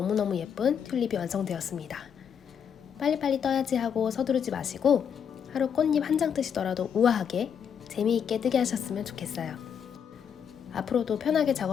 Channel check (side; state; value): right; quieter; 7.7 dB